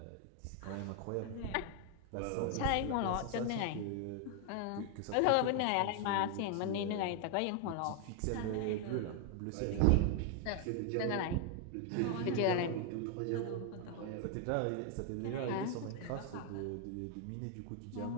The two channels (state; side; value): different; both; correlation 0.00